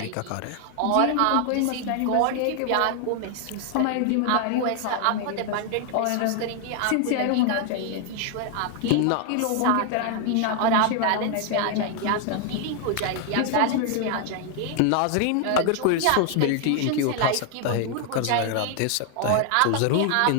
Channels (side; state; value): both; different; correlation 0.00